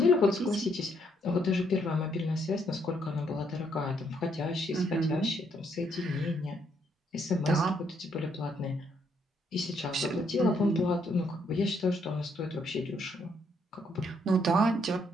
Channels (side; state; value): both; normal; correlation 0.72